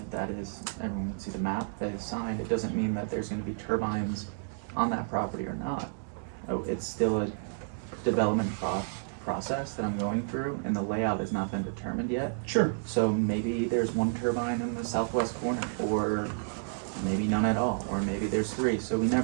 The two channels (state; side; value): silent; left; digital silence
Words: that is, everyone can see the map that is signed, it doesn't mean that there's gonna be turbines on that property or not. Oh, it's still a development process that I'm going through, and the layout has not been determined yet. sure. So maybe there's one turbine in the southwest corner, or maybe none at all, or maybe there's three, so we